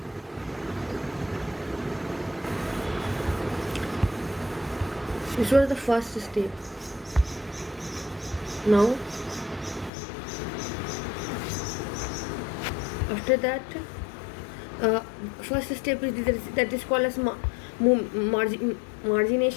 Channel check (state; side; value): drops out; right; at 9.9 s